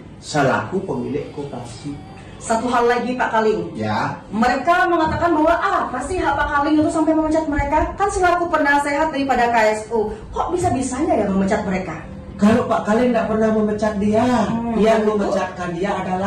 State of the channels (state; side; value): identical; both; correlation 1.00